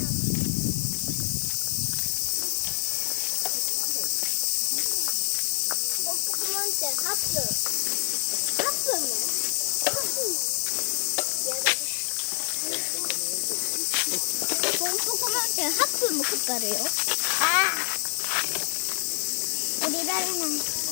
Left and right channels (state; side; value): silent; right; digital silence